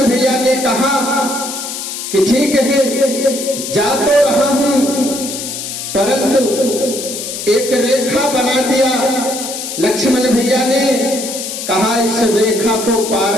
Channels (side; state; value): left; noise; hiss, 7 dB below the sound